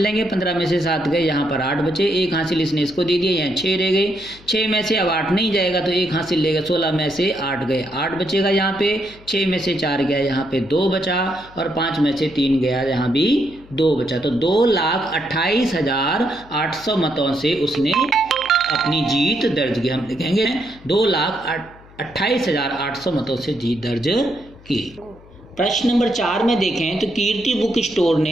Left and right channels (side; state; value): left; noise; hum, 23 dB below the sound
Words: लेंगे। 15 में से 7 गए, यहाँ पर 8 बचे। 1 हासिल इसने इसको दे दिया, यहाँ 6 रह गए। 6 में से अब 8 नहीं जाएगा तो 1 हासिल लेगा। 16 में से 8 गए, 8 बचेगा यहाँ पे। 6 में से 4 गया, यहाँ पे 2 बचा और 5 में से 3 गया, यहाँ भी 2 बचा। तो 2,28,800 मतों से उसने अपनी जीत दर्ज की। हम लिखेंगे 2,28,800 मतों से जीत दर्ज की। प्रश्न नंबर 4 में देखें तो कीर्ति बुक स्टोर